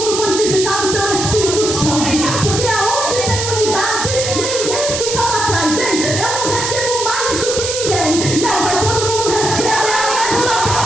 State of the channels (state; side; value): noise; right; hiss, 3 dB below the sound